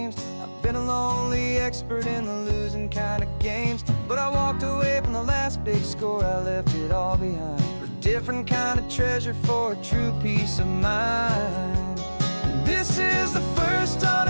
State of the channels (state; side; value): inverted; both; correlation -1.00